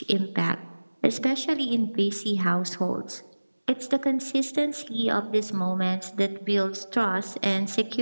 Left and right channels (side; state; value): both; inverted; correlation -1.00